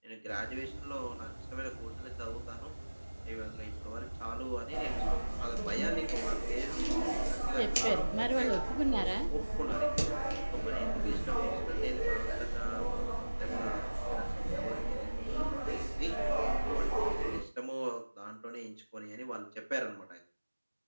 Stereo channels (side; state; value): both; inverted; correlation -1.00